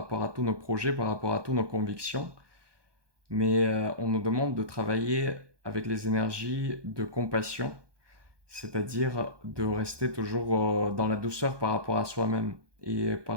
à tous nos projets, par rapport à toutes nos convictions. Mais on nous demande de travailler avec les énergies de compassion, c'est-à-dire de rester toujours dans la douceur par rapport à soi-même et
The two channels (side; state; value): left; late; 1.2 ms